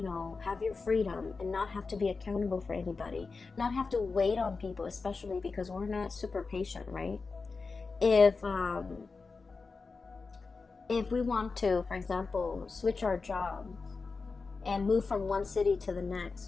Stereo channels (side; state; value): right; quieter; 4.4 dB